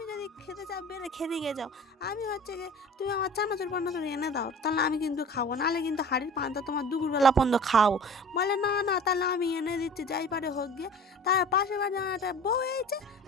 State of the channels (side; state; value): both; normal; correlation 0.40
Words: যদি খেতে চাও বেড়ে খেতে গিয়ে যাও, আমি হচ্ছে গিয়ে তুমি আমার চানাচুর পানাচুর এনে দাও, তাহলে আমি কিন্তু খাবো, নাহলে কিন্তু হাঁড়ির পান্তা তোমার দুপুরবেলা পর্যন্ত খাও। বলে না না তাহলে আমি এনে দিচ্ছি, যাই পারে হোক গিয়ে। তার পাশে বাড়ি আমার একটা বউ এসেছে,